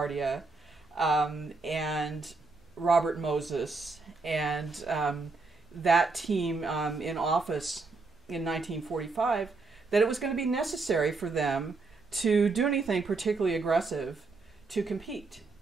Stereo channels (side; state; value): left; quieter; 3.8 dB